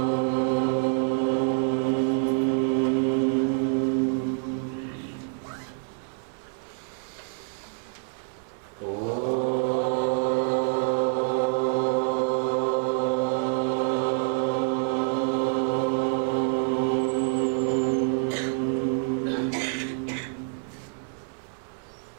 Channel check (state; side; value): silent; left; 60 dB below the other